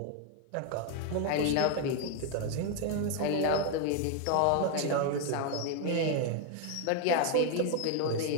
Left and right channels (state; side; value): different; both; correlation 0.01